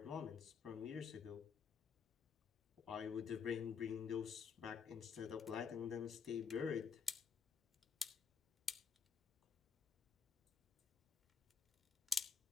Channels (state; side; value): quieter; right; 6.0 dB